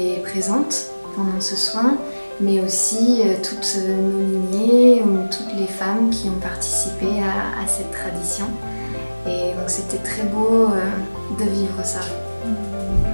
présentes pendant ce soin, mais aussi toutes nos lignées ou toutes les femmes qui ont participé à cette tradition. Et donc c'était très beau de vivre ça.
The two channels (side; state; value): both; inverted; correlation -1.00